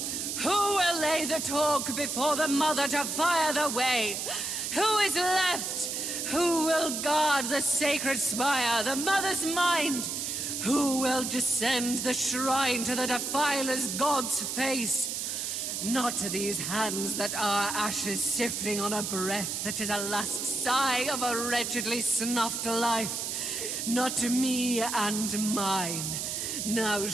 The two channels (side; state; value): right; noise; hiss, 3 dB below the sound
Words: will lay the talk before the Mother to fire the way? Who is left? Who will guard the sacred spire, the Mother's mind? Who will descend the shrine to the Defiler's God's face? Not to these hands that are ashes sifting on a breath that is a last sigh of a wretchedly snuffed life. Not to me and mine. Now